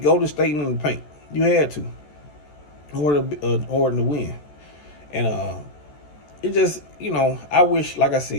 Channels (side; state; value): right; late; 14 ms